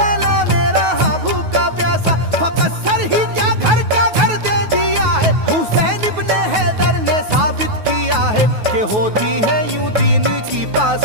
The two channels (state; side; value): late; left; 9.3 ms